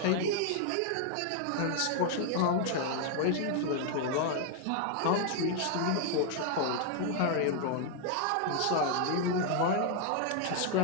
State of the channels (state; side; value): different; both; correlation 0.00